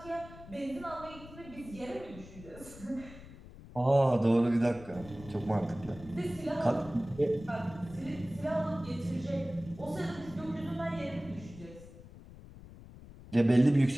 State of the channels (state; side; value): noise; left; rumble, 17 dB below the sound